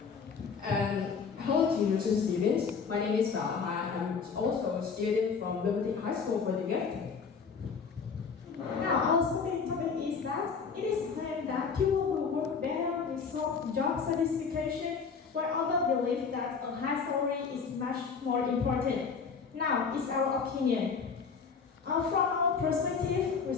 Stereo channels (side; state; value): right; quieter; 5.6 dB